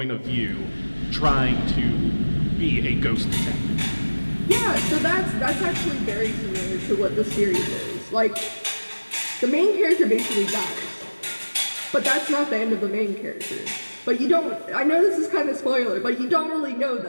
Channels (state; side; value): inverted; both; correlation -1.00